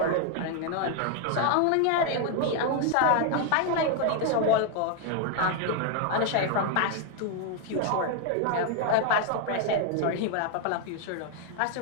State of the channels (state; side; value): different; both; correlation 0.01